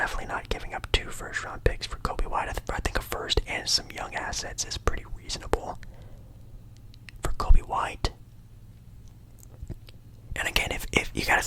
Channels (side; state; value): both; identical; correlation 1.00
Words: not giving up 2 first-round picks for Kobe White. I think a first and some young assets is pretty reasonable for Kobe White. And again, if you gotta